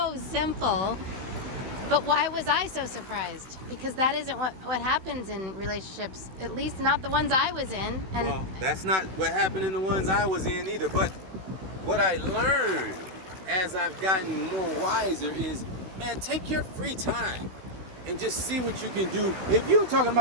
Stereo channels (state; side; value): late; left; 16 ms